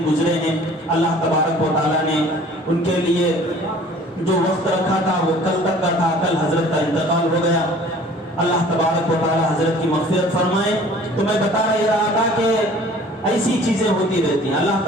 گزرے ہیں۔ اللہ تبارک و تعالیٰ نے ان کے لیے جو وقت رکھا تھا وہ کل تک کا تھا، کل حضرت کا انتقال ہو گیا۔ اللہ تبارک و تعالیٰ حضرت کی مغفرت فرمائے۔ تو میں بتا رہا تھا کہ ایسی چیزیں ہوتی رہتی ہیں۔ اللہ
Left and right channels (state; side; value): normal; both; correlation 0.50